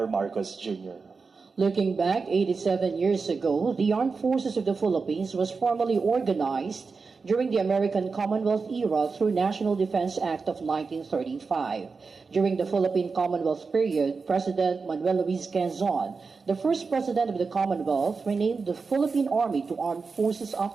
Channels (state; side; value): quieter; left; 4.7 dB